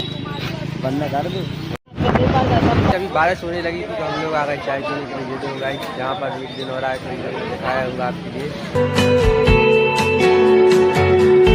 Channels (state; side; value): identical; both; correlation 1.00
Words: बंदा कर दो। अभी बारिश होने लगी थी तो हम लोग आ गए चाय पीने के लिए। ये दो गाइस, जहाँ पर एक दिन हो रहा है तो दिखाया होगा आपके लिए।